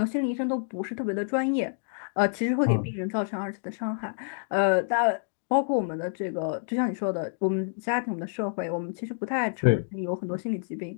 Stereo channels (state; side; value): silent; right; digital silence